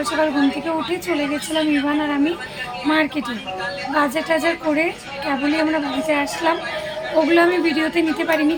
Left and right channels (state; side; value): identical; both; correlation 1.00